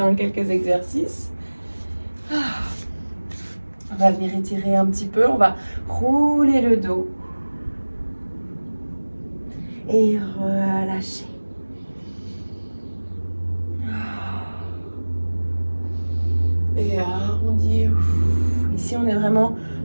quelques exercices. On va venir étirer un petit peu, on va rouler le dos et relâcher. Et arrondir. Ici, on est vraiment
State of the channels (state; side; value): inverted; both; correlation -1.00